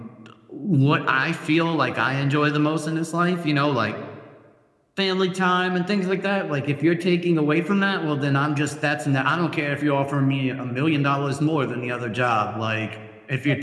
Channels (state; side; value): identical; both; correlation 1.00